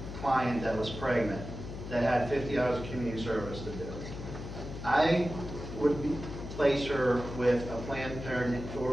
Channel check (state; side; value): noise; left; hum, 9 dB below the sound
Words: client that was pregnant, that had 50 hours of community service to do, I would place her with a Planned Parenthood